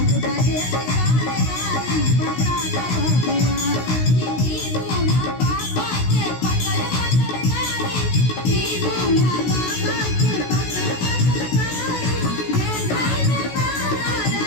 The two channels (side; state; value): right; late; 16 ms